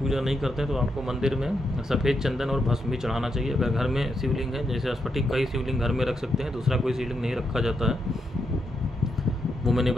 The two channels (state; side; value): normal; both; correlation 0.82